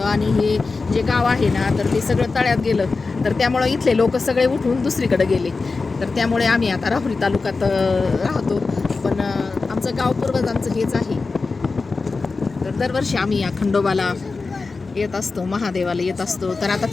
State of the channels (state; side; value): quieter; right; 4.1 dB